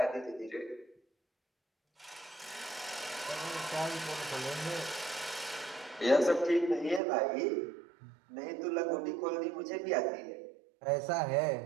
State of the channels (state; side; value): drops out; left; at 7.0 s